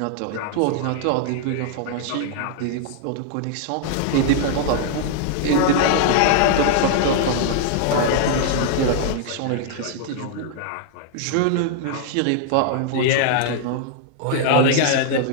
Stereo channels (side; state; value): both; different; correlation 0.00